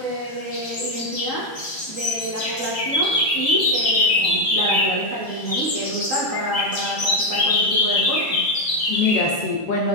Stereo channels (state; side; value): late; right; 2.0 ms